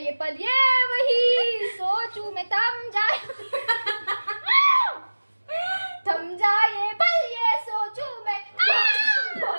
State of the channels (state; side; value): inverted; both; correlation -1.00